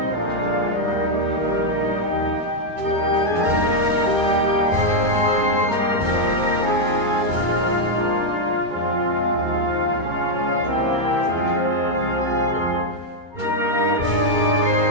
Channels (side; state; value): left; late; 2.3 ms